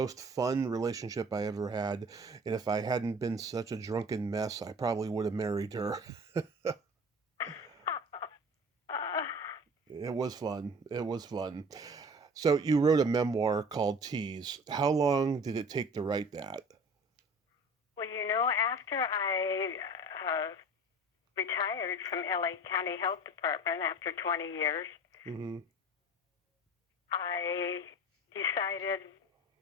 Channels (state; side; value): normal; both; correlation 0.41